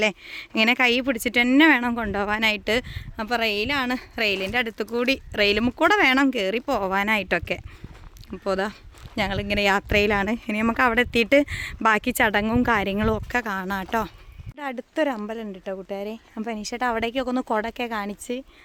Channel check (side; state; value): both; identical; correlation 1.00